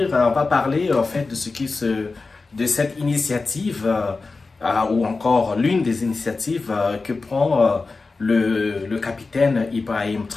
parler en fait de de cette initiative ou encore l'une des initiatives que prend le capitaine Ibrahim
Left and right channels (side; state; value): right; quieter; 3.9 dB